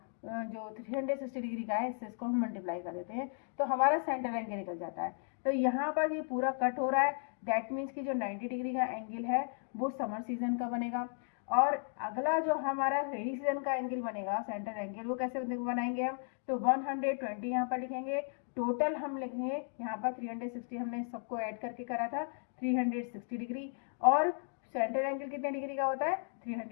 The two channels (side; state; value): right; silent; 54 dB below the other